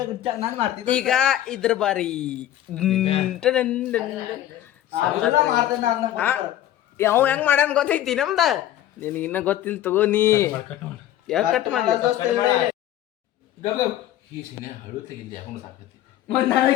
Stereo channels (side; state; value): right; quieter; 12.6 dB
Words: ನಾನು ಮಾಡ್ತಿದ್ದೆ ಈಗ ಇದ್ರ ಬಾರಿ ಯಾವ ಹೆಂಗ್ ಮಾಡ್ಯಾನ ಗೊತ್ತೈತಿ ನಮ್ದ ನಿನಗೆ ಇನ್ನ ಗೊತ್ತಿಲ್ಲ ತಗೋ ನೀ ಯಾಕೆ ಕಟ್ ಮಾಡ್ಲಿ ಈ ಸಿನೆ ಹಳು ತೆಗಿದ್ದೆ ಯಾಕೊಂಡು ಸಾಕತಿ